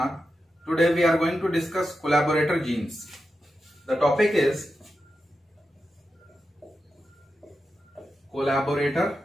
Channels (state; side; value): normal; both; correlation 0.89